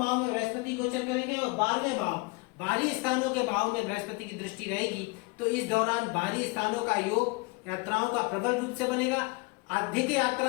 में बृहस्पति गोचर करेंगे और 12वें भाव बाहरी स्थानों के भाव में बृहस्पति की दृष्टि रहेगी। तो इस दौरान बाहरी स्थानों का योग यात्राओं का प्रबल रूप से बनेगा, अधिक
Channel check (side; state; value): right; quieter; 27.0 dB